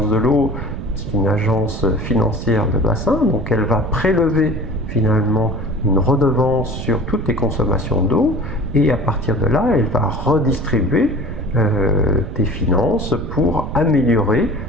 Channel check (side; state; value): right; noise; rumble, 7 dB below the sound